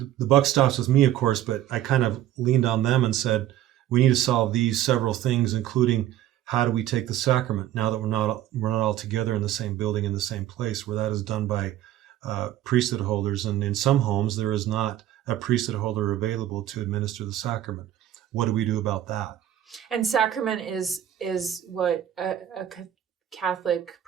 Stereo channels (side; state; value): left; quieter; 12.3 dB